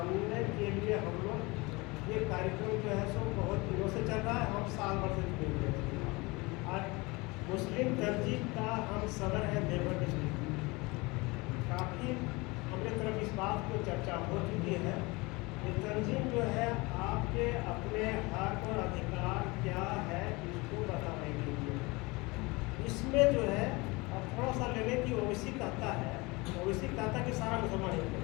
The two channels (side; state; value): right; quieter; 24.7 dB